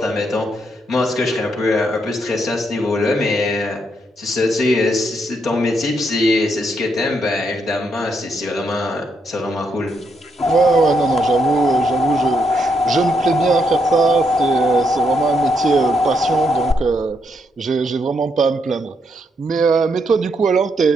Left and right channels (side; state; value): both; normal; correlation 0.78